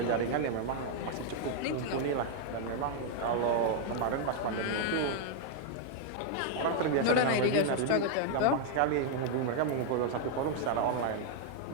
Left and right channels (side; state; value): both; different; correlation 0.00